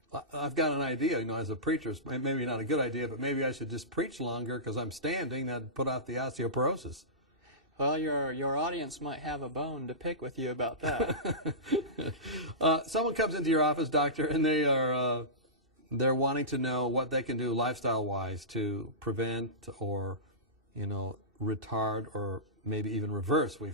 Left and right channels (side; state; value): both; normal; correlation -0.19